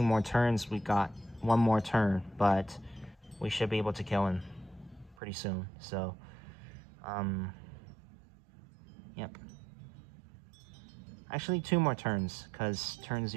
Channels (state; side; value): drops out; left; at 5.2 s